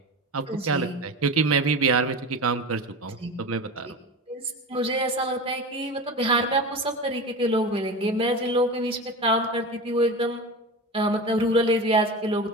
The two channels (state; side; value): normal; both; correlation 0.28